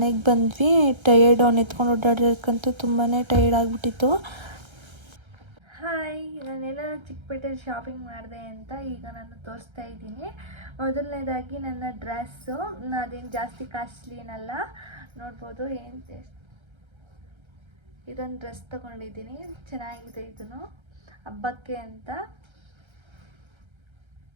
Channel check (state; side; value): late; left; 1.3 ms